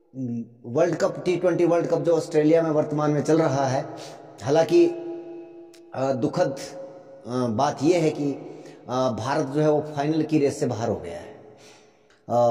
world cup T20 world cup जो ऑस्ट्रेलिया में वर्तमान में चल रहा है, हालांकि दुखद बात यह है कि भारत जो है वो फाइनल की रेस से बाहर हो गया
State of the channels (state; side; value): identical; both; correlation 1.00